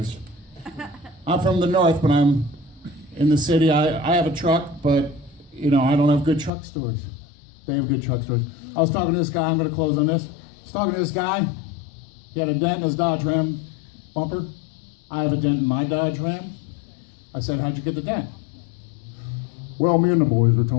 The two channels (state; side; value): drops out; right; at 6.5 s